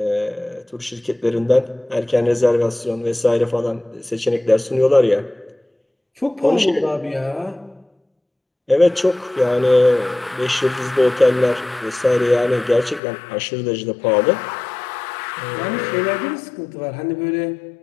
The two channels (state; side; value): drops out; right; at 13.0 s